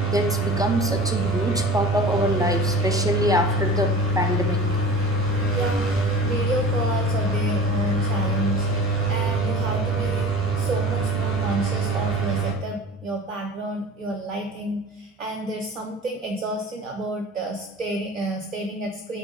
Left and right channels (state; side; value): normal; both; correlation 0.39